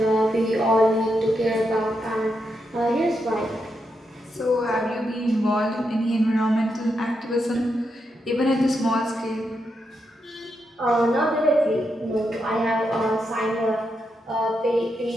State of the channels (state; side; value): normal; both; correlation 0.83